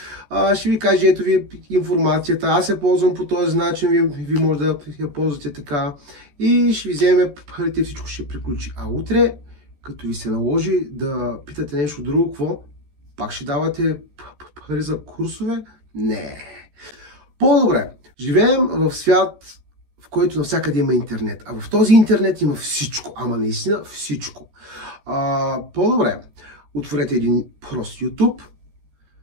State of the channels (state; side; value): late; left; 14 ms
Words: ще ви каже, ето ви информацията, аз я ползвам по този начин, ви може да я ползвате така и ще ви вземе парите, всичко ще приключи. А утре, като ви се наложи да питате нещо друго, какво? Пак ще давате пари за курсове? Не. По-добре. Живеем в свят, в който навсякъде има интернет. А в този интернет има всичко. Ама наистина всичко. По-добре. Отворете един прост YouTube.